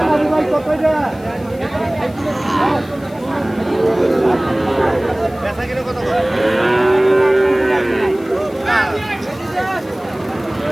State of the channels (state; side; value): noise; left; hiss, 26 dB below the sound